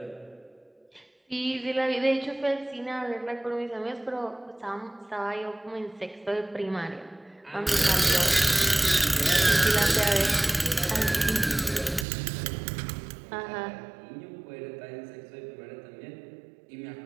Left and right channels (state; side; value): drops out; left; at 12.1 s